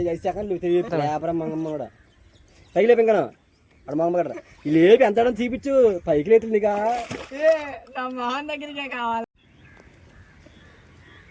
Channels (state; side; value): identical; both; correlation 1.00